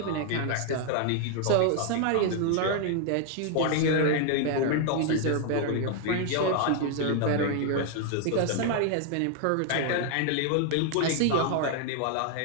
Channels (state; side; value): different; both; correlation 0.00